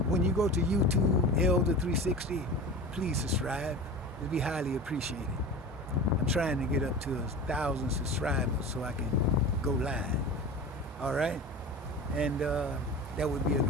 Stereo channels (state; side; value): normal; both; correlation 0.33